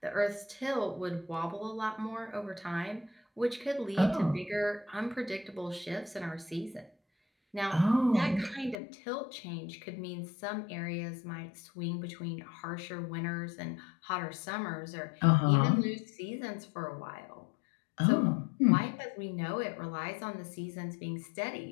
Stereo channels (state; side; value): drops out; right; at 8.8 s